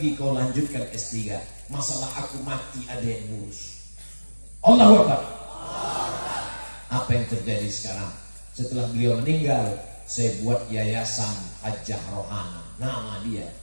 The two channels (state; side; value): inverted; both; correlation -1.00